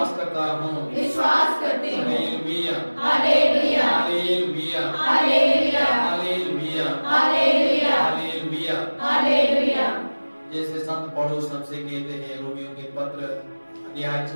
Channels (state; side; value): inverted; both; correlation -1.00